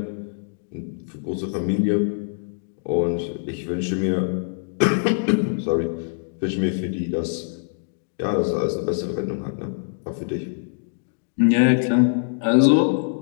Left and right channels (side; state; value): right; silent; digital silence